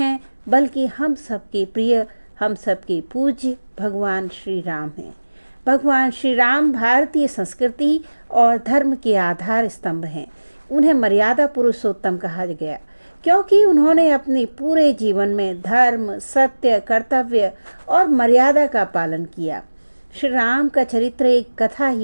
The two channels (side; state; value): both; inverted; correlation -1.00